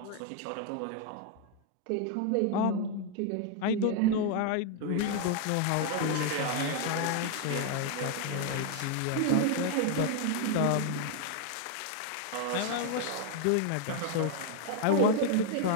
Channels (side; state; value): both; different; correlation 0.00